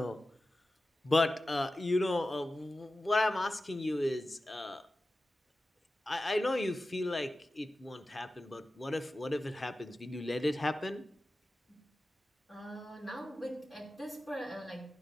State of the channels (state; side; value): normal; both; correlation 0.94